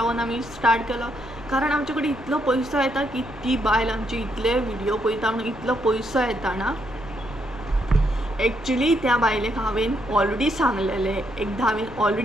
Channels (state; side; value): noise; left; rumble, 17 dB below the sound